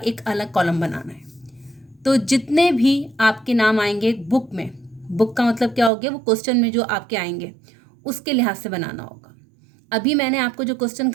अलग कॉलम बनाना है। तो जितने भी आपके नाम आएंगे बुक में, बुक का मतलब क्या हो गया? वो क्वेश्चन में जो आपके आएंगे उसके लिहाज से बनाना होगा। अभी मैंने आपको जो क्वेश्चन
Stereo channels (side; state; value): left; drops out; at 5.9 s